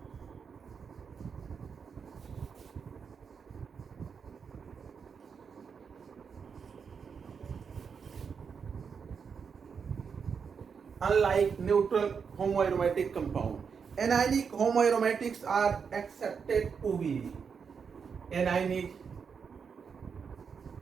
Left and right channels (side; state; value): left; quieter; 6.2 dB